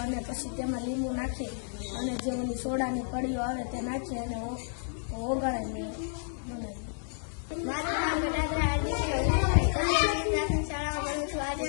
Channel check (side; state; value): right; silent; digital silence